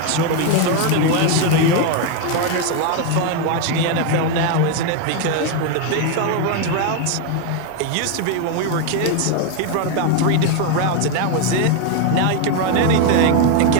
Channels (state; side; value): different; both; correlation 0.01